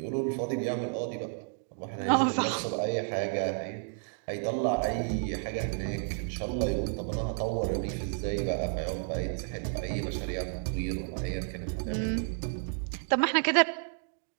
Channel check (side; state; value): left; silent; 57 dB below the other